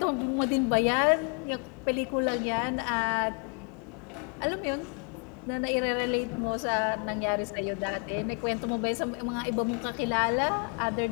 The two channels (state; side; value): quieter; right; 37.0 dB